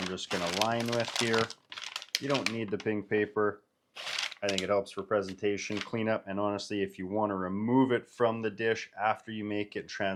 just going to line with here. You don't need the pink paper. I think it helps for presentation, cleanup, and honestly, if you want to remove it from the dish after you make it,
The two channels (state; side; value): identical; both; correlation 1.00